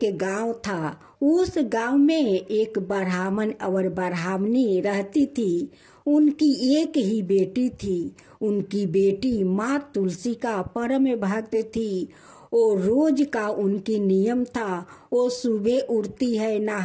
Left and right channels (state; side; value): identical; both; correlation 1.00